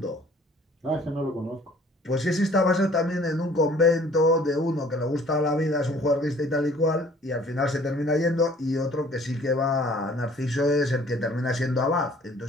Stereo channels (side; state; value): both; normal; correlation 0.54